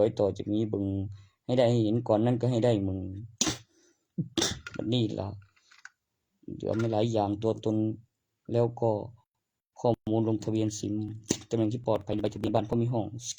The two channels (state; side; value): identical; both; correlation 1.00